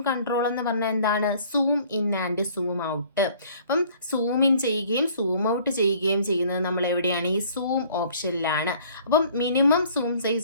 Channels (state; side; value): inverted; both; correlation -0.55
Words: കൺട്രോൾ എന്ന് പറഞ്ഞാൽ എന്താണ്, zoom in and zoom out. അപ്പം സൂം ഇൻ ചെയ്യുകയും സൂം ഔട്ട് ചെയ്യുകയും ചെയ്യുന്നത് നമ്മൾ എവിടെയാണ്, ഈ സൂം ഓപ്ഷനിലാണ്. അപ്പം മിനിമം സൂം